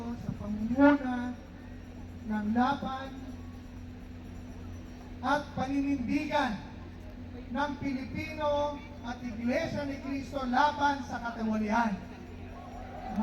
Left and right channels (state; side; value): identical; both; correlation 1.00